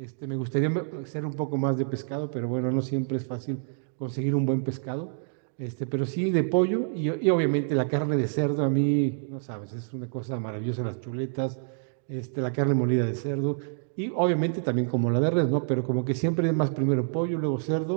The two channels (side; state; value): left; silent; digital silence